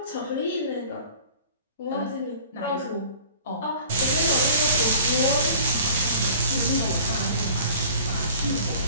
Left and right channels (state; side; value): inverted; both; correlation -0.46